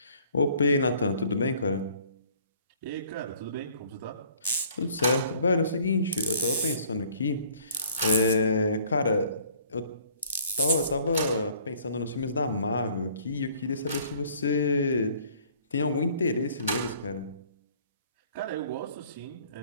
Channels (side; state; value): both; inverted; correlation -0.57